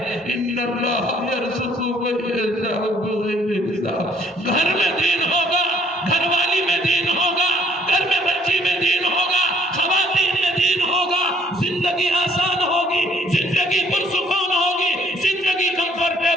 ان اللہ یرزق من یشاء بغیر حساب. گھر میں دین ہوگا, گھر والی میں دین ہوگا, گھر میں بچی میں دین ہوگا, خواتین میں دین ہوگا, زندگی آسان ہوگی, زندگی پرسکون ہوگی, زندگی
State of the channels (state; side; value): normal; both; correlation 0.62